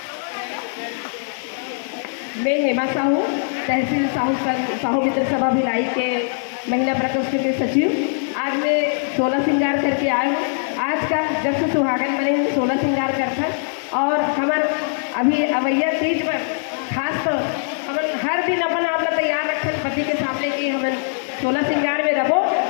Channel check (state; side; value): silent; right; digital silence